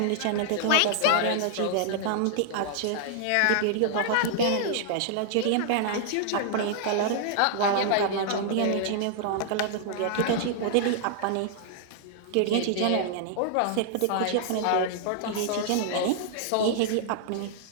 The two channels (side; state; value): both; different; correlation -0.01